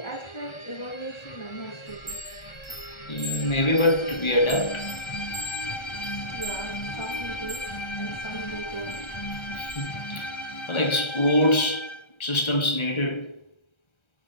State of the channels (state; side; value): late; right; 1.3 ms